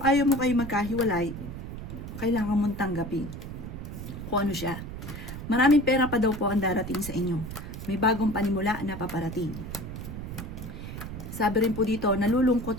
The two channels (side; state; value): right; noise; rumble, 8 dB below the sound